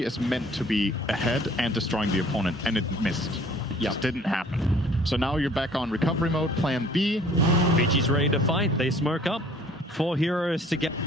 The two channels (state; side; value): normal; both; correlation 0.54